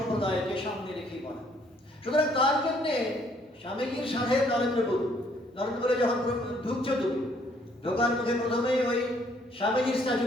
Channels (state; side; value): normal; both; correlation 0.65